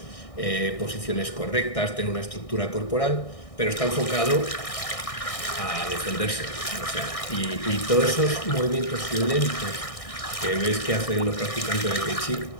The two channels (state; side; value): late; right; 1.6 ms